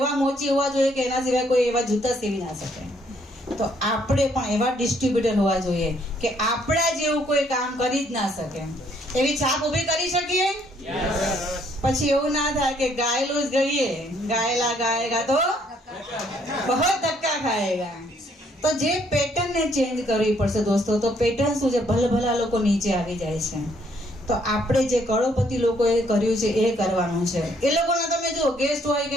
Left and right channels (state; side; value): normal; both; correlation 0.67